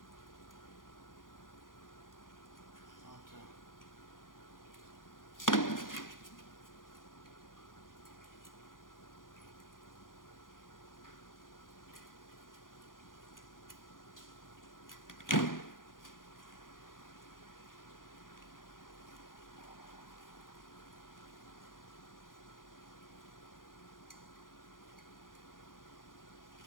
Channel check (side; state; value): right; late; 0.90 ms